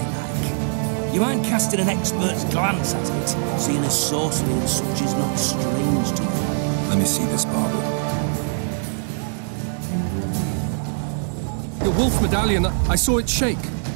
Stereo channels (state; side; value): silent; left; digital silence